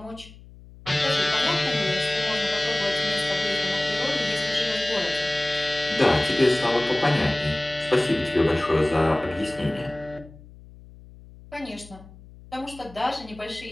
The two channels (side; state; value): left; noise; hum, 20 dB below the sound